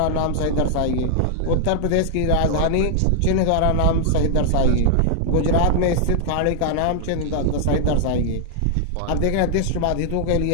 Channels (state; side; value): different; both; correlation 0.00